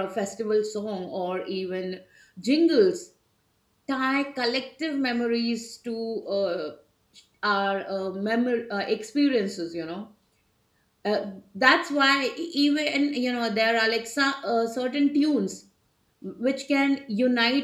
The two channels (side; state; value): both; identical; correlation 1.00